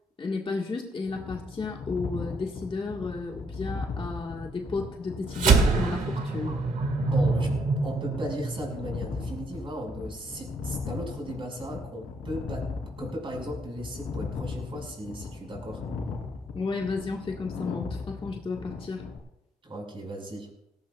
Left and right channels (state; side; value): normal; both; correlation 0.70